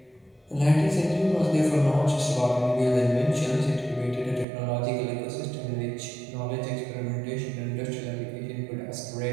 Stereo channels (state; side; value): drops out; left; at 4.5 s